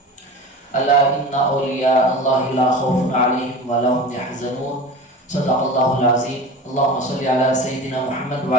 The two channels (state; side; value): normal; both; correlation 0.33